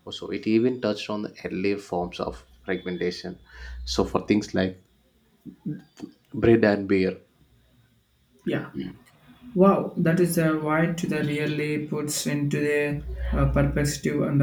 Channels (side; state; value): both; identical; correlation 1.00